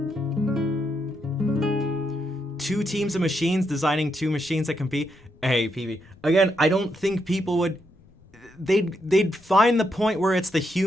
2 teams of machines designing 2 machines that compete. Hey, PB. Again, I don't think people would, they'd find the point where it's the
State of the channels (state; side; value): noise; left; rumble, 28 dB below the sound